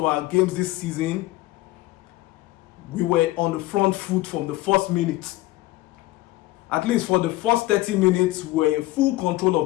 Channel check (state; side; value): quieter; right; 18.3 dB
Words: our games this season, we were on the front foot from the first minute. At least for the first 30 minutes, we were in full control